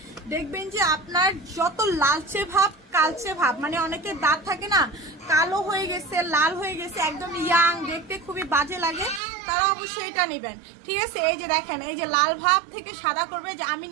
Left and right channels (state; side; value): drops out; left; at 9.2 s